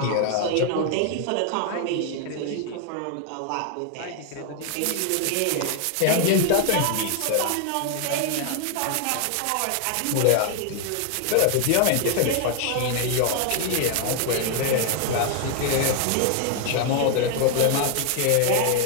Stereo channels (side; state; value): both; different; correlation 0.00